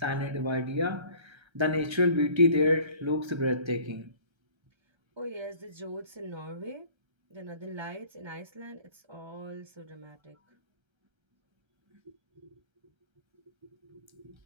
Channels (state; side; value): late; left; 1.3 ms